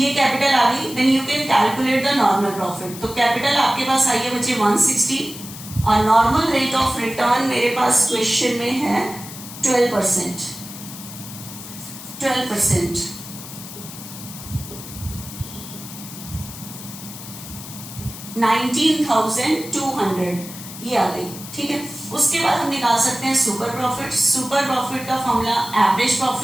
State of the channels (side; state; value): left; noise; hiss, 13 dB below the sound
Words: कैपिटल आ गई। Then you can calculate the normal profit. तो कैपिटल आपके पास आई है बच्चे 160 और नॉर्मल रेट ऑफ रिटर्न मेरे पास क्वेश्चन में है 12%। 12% 19,200 ये आ गई। ठीक है, उसके बाद हम निकाल सकते हैं सुपर प्रॉफिट। सुपर प्रॉफिट का formula average